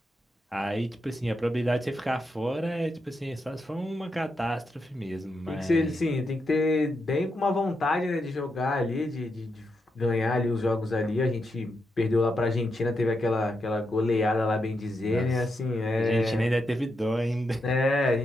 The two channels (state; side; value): normal; both; correlation 0.84